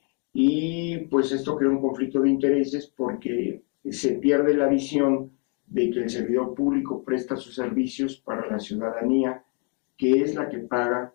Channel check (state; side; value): quieter; right; 37.2 dB